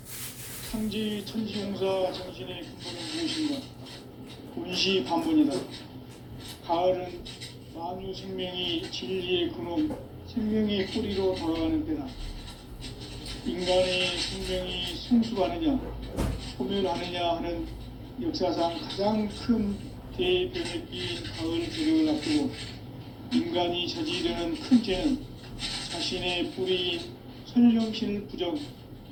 상제의 천지공사 정신의 근본은 무엇인가? 온시반문이다. 가을은 만유 생명이 진리의 근원, 생명의 뿌리로 돌아가는 때다. 인간의 생명이 성숙하느냐, 소멸하느냐 하는 역사상 가장 큰 대변혁기인 가을 개벽을 앞두고 인간이 저지르는 큰 죄는 자신의 뿌리인 설령신을 부정,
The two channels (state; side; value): identical; both; correlation 1.00